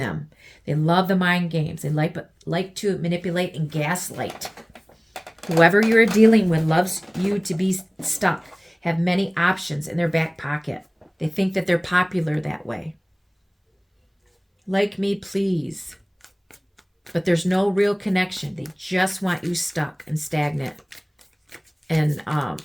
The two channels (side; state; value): both; identical; correlation 1.00